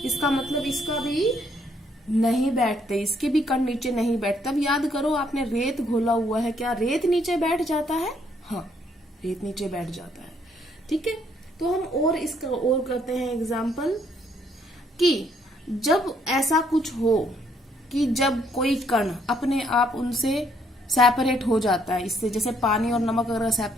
इसका मतलब इसका भी नहीं बैठते, इसके भी कण नीचे नहीं बैठते। अब याद करो, आपने रेत घोला हुआ है, क्या रेत नीचे बैठ जाता है? हाँ, रेत नीचे बैठ जाता है, ठीक है। तो हम और इसका और करते हैं एग्जाम्पल, कि जब ऐसा कुछ हो कि जब कोई कण अपने आप उनसे सेपरेट हो जाता है, इससे, जैसे पानी और नमक अगर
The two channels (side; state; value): both; normal; correlation 0.69